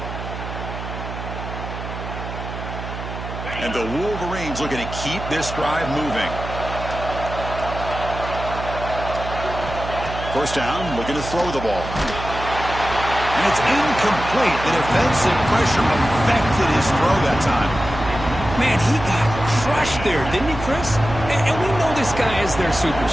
And the Wolverines looking to keep this drive moving. First down, looking to throw the ball. And it's incomplete. The defensive pressure affected his throw that time. Man, he got crushed there, didn't he, Chris? And we know this guy is their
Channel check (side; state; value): right; noise; hum, 8 dB below the sound